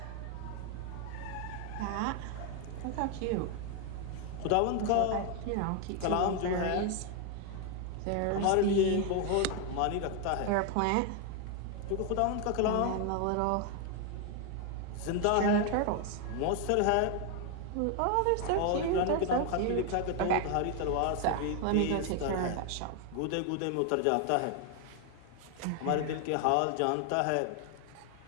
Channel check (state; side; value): different; both; correlation 0.01